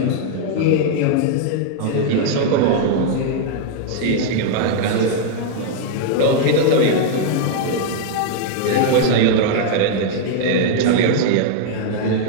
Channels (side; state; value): both; different; correlation 0.00